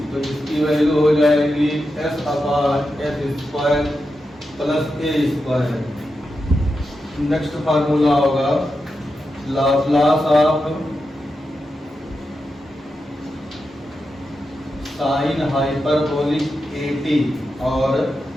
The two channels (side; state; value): both; normal; correlation 0.89